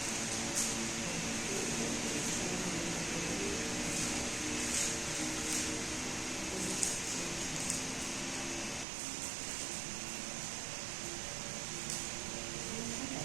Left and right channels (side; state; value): left; drops out; at 8.8 s